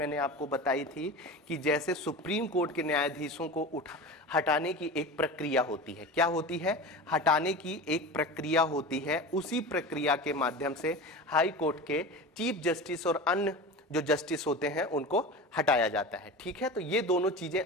आपको बताई थी कि जैसे सुप्रीम कोर्ट के न्यायाधीशों को हटाने की एक प्रक्रिया होती है। क्या होती है? हटाने की एक प्रक्रिया होती है। उसी प्रक्रिया के माध्यम से हाई कोर्ट के चीफ जस्टिस और अन्य जो जस्टिस होते हैं उनको हटाया जाता है। ठीक है, तो ये दोनों चीज़ें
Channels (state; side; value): normal; both; correlation 0.30